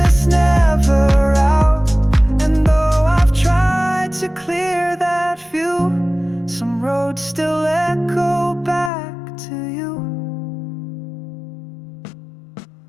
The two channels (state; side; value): drops out; right; at 8.9 s